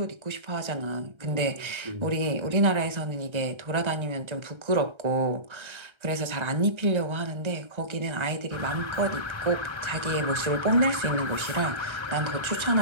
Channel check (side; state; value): left; late; 1.3 ms